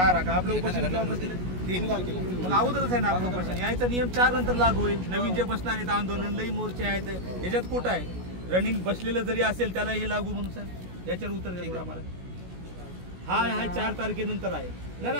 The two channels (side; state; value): left; late; 16 ms